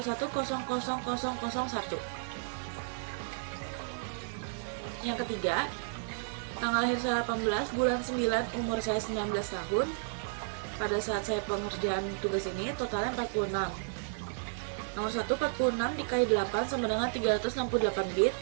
Yang ketiga, tanggal lahir saya 18, bulan 9, umur saya 19 tahun. Pada saat saya pengerjaan tugas ini, totalnya 46. Nomor 1, 46 dikali 8 sama dengan 368 bit.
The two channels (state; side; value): silent; left; 56 dB below the other